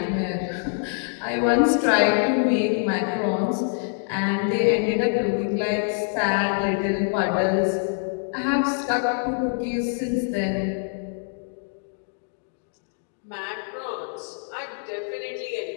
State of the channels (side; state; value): right; silent; digital silence